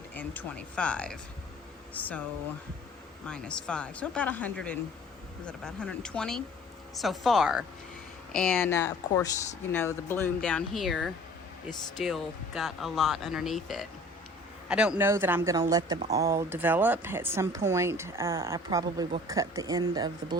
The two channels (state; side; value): normal; both; correlation 0.49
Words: So minus 5, so about 120 so far. And of course, the bloom down here is still got a lot underneath it. I don't know that I'm going to let them all develop. At some point, I probably will cut the end of the